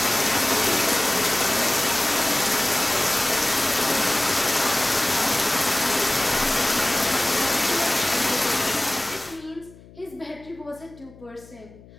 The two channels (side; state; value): left; noise; hum, 22 dB below the sound